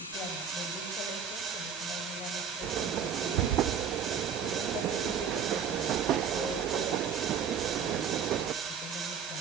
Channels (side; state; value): left; quieter; 7.3 dB